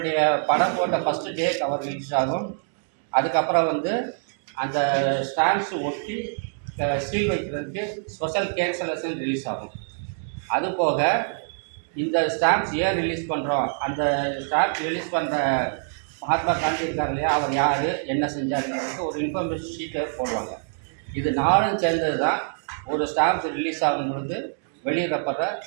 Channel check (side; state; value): left; silent; digital silence